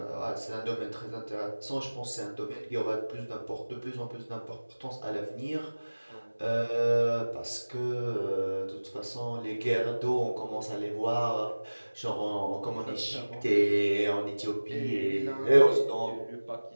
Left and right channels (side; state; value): both; inverted; correlation -1.00